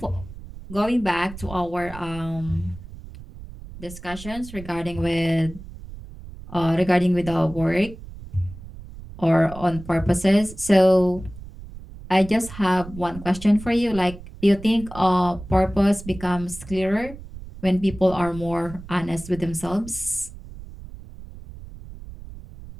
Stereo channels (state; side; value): noise; right; rumble, 15 dB below the sound